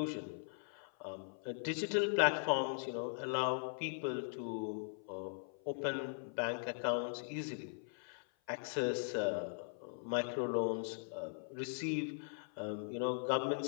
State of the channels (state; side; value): silent; right; 51 dB below the other